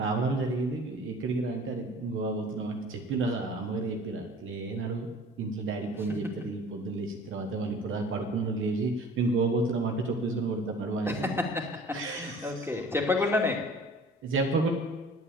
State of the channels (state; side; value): normal; both; correlation 0.46